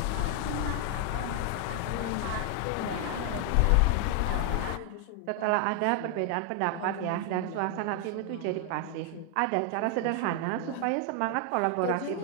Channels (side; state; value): both; different; correlation 0.00